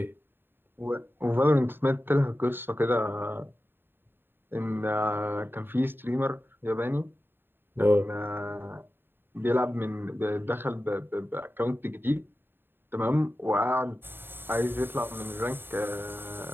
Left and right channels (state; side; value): late; left; 0.10 ms